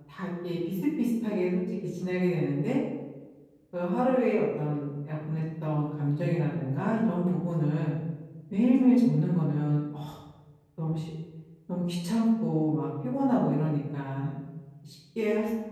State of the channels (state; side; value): identical; both; correlation 1.00